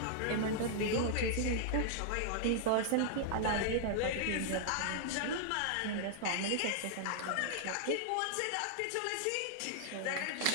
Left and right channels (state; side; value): different; both; correlation -0.01